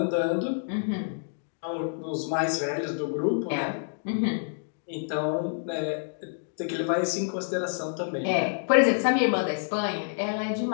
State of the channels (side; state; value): right; silent; digital silence